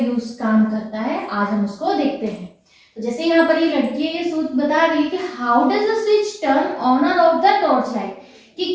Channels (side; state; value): both; identical; correlation 1.00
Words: काम करता है, आज हम उसको देखते हैं। तो जैसे यहाँ पर ये लड़की है, ये सूट बता रही है कि how does a switch turn on और ऑफ द टॉर्च लाइट, कि